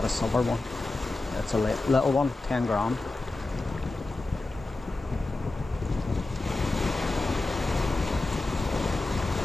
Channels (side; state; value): right; quieter; 3.1 dB